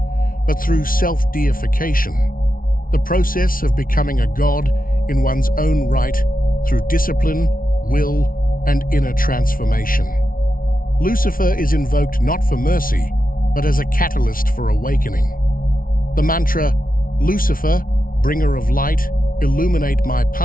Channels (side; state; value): right; late; 0.42 ms